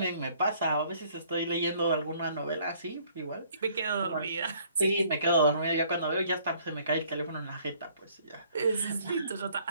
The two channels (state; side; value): inverted; both; correlation -0.60